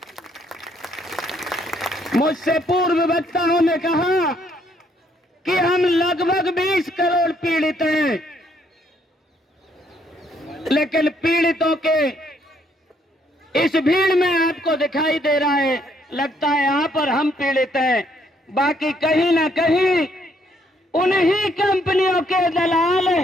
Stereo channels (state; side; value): normal; both; correlation 0.69